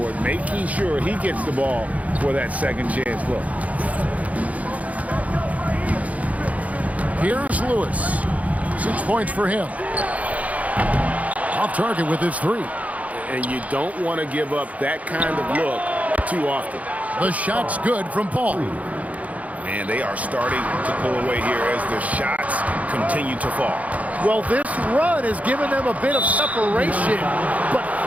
making sure he gets the ball for that second chance look. Here's Lewis. 6 points for him. Off target with his 3. And you don't want to give up that kind of look too often. The shot's good from Paul. And they are starting to pull away here as the shots continue to fall. Well, this run has given them a bit of separation, but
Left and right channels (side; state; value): left; late; 0.070 ms